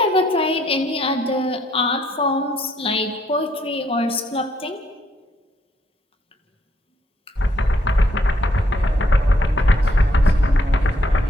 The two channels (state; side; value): normal; both; correlation 0.71